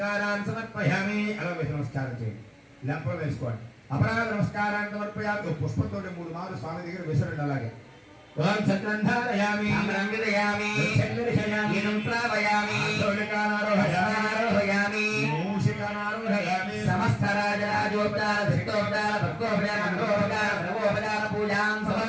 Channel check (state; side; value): identical; both; correlation 1.00